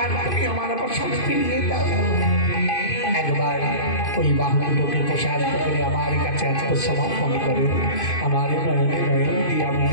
তুমি আমার বসন্ত ফিরিয়ে দাও। একবার ওই বাহুগুলোকে প্রসারিত করে আমার কাছে আত্মসমর্পণ করো, আমার নয়নে নয়ন দিয়ে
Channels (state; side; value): late; right; 2.5 ms